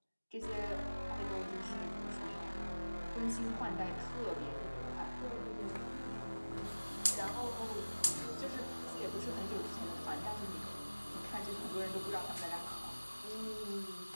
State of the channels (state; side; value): inverted; both; correlation -1.00